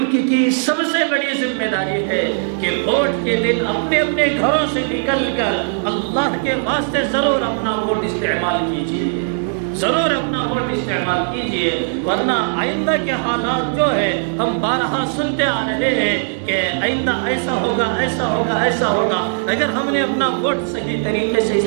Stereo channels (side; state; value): left; silent; 67 dB below the other